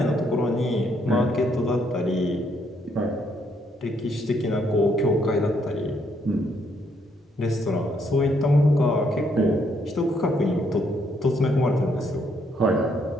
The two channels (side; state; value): both; normal; correlation 0.72